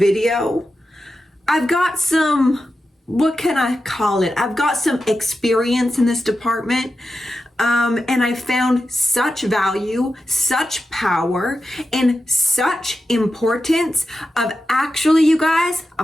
I've got some, what can I call it? I've got some experience in this department, and I found such value, such power, and such importance of actually, you guys,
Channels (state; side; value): normal; both; correlation 0.91